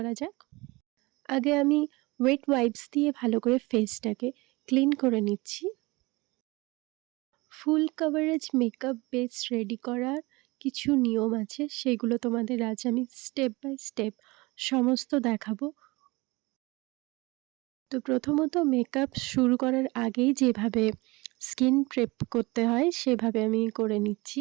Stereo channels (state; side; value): quieter; left; 23.4 dB